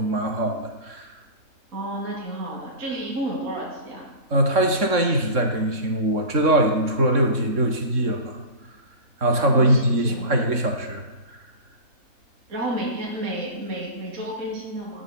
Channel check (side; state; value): left; late; 3.6 ms